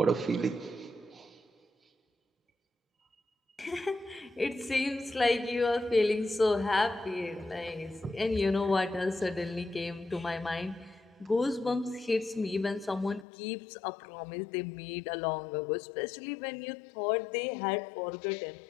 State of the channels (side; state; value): right; drops out; at 13.2 s